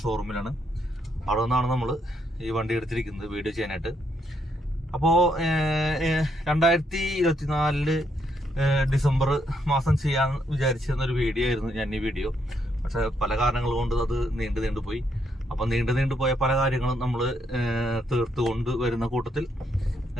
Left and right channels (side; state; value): both; normal; correlation 0.75